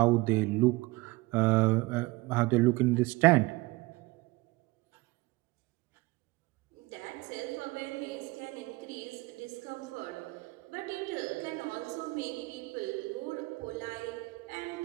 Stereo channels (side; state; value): left; quieter; 22.0 dB